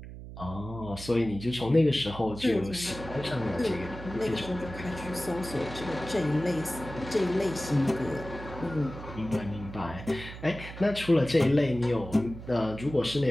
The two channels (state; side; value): noise; right; hum, 12 dB below the sound